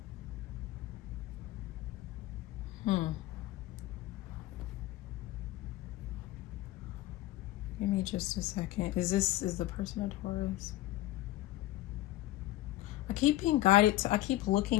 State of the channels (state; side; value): quieter; right; 16.1 dB